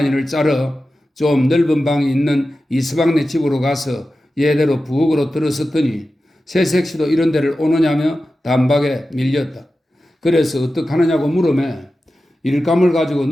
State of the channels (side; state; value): both; normal; correlation 0.93